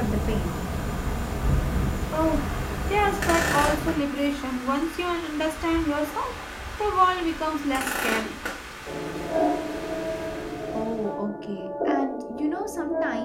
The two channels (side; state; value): both; identical; correlation 1.00